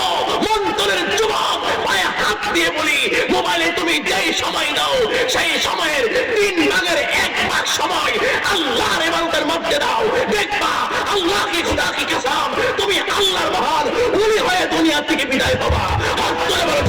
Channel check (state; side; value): identical; both; correlation 1.00